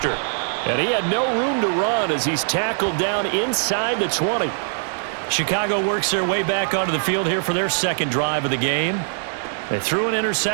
And he had no room to run as he's tackled down inside the 20. Chicago works their way back onto the field here for their second drive of the game. They threw an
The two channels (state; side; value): silent; left; digital silence